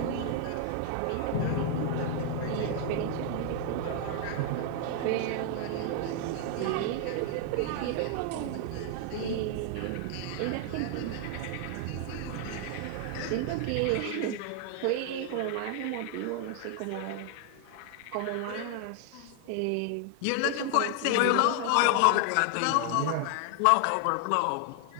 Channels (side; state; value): both; different; correlation 0.00